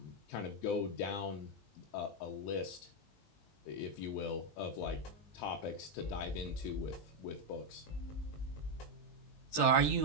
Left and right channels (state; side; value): late; right; 20 ms